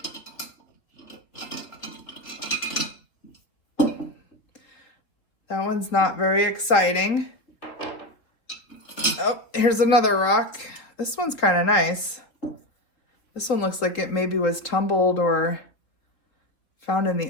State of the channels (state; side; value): late; right; 3.6 ms